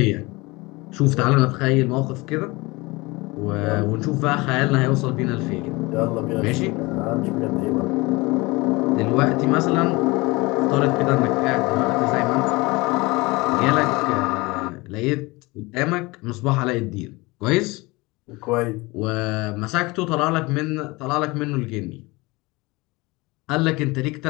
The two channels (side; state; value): right; quieter; 23.4 dB